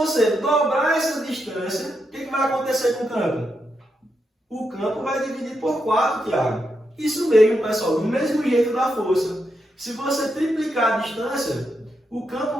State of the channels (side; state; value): both; normal; correlation 0.83